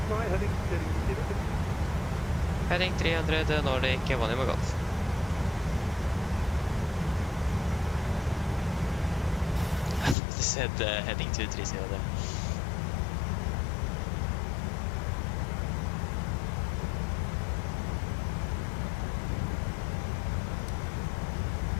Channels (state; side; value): drops out; right; at 10.2 s